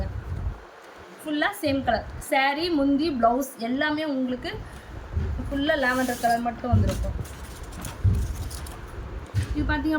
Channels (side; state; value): both; identical; correlation 1.00